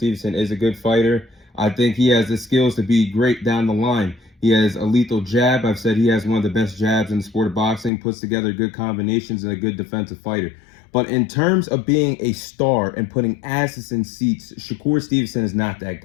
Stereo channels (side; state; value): right; drops out; at 7.9 s